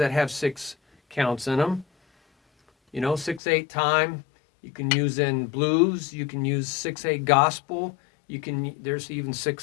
have 6 counts in them. You know, 6/8 time. You can use in blues. You can use 6/8 gospel. There's even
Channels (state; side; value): drops out; right; at 3.4 s